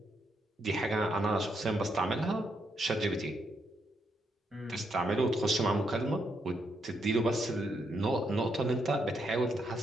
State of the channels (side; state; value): both; normal; correlation 0.78